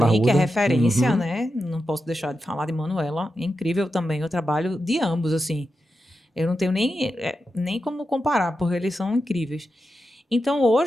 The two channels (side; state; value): both; normal; correlation 0.89